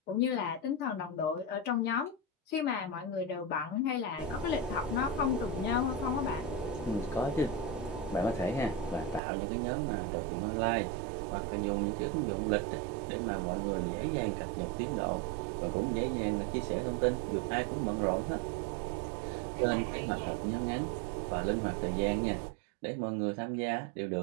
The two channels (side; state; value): left; drops out; at 9.2 s